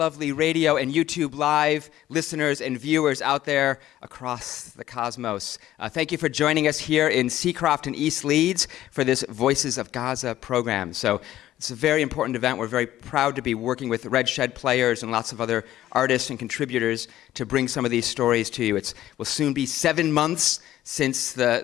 radio and YouTube live listeners and viewers out there across the cosmos. Thank you for joining us here in Seacroft and East Leeds for this Voices of Gaza program. So it's a very important event. We're very proud to be working with Red Shed players and lots of other artists and contributors to bring some of these stories to you. It will soon be 7 months since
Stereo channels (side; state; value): right; quieter; 13.6 dB